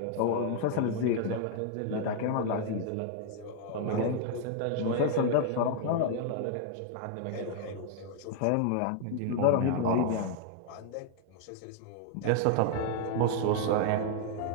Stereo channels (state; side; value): different; both; correlation 0.00